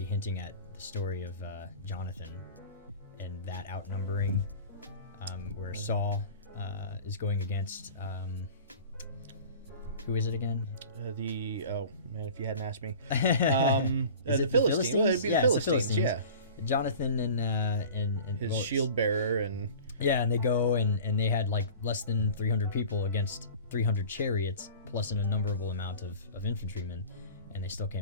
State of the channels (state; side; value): inverted; both; correlation -0.40